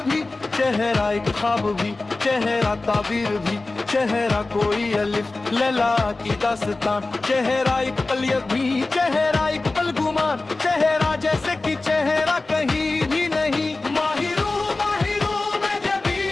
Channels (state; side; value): quieter; right; 3.3 dB